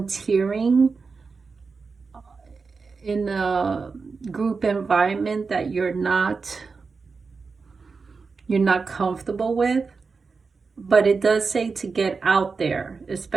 in a group environment that you're not comfortable with. But it does say to get out there,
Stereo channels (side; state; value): left; quieter; 4.7 dB